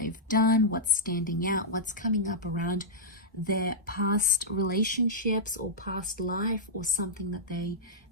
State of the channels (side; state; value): both; normal; correlation -0.09